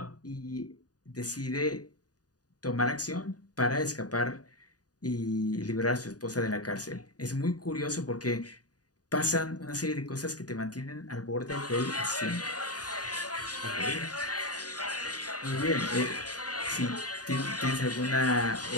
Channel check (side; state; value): right; late; 0.68 ms